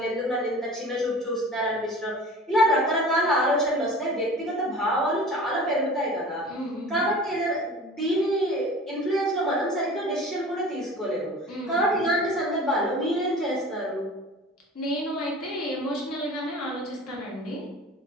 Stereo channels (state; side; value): normal; both; correlation 0.40